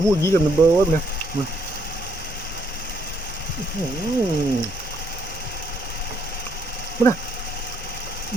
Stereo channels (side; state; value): both; normal; correlation 0.70